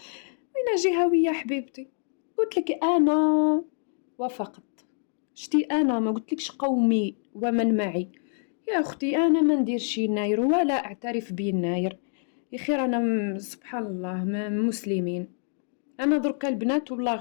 جهويه حبيبتي؟ قلت لك انا وافقت. شتي انا ما قلتلكش قومي ومن معي يا اختي، انا ما نديرش يناير ولا اعترف بيناير. يا خير انا سبحان الله ما مسلمين. انا دركا البنات والله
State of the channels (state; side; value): silent; right; 60 dB below the other